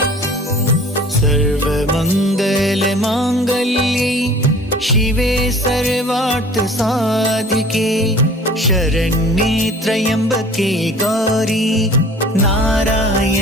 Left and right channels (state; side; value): normal; both; correlation 0.47